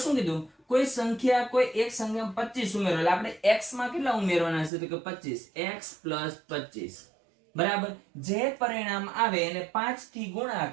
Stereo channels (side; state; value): left; drops out; at 4.7 s